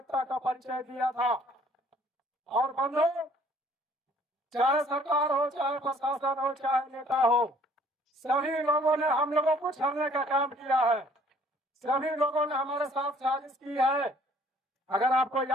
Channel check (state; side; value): normal; both; correlation 0.58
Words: का परिचय दिया था। और बंधु, चाहे सरकार हो, चाहे प्रशासन हो, चाहे नेता हो, सभी लोगों ने हम लोगों को छलने का काम किया है। सभी लोगों ने हमारे साथ साजिश की है। अगर आपको